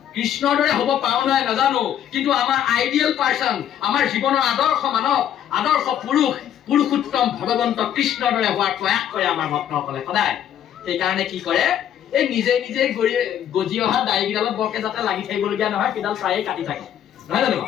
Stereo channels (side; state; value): right; quieter; 10.2 dB